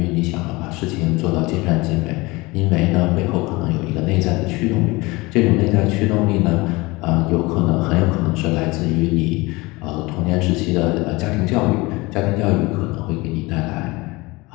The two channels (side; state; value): right; quieter; 22.9 dB